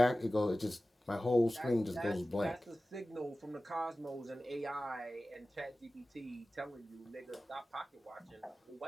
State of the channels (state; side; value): normal; both; correlation 0.96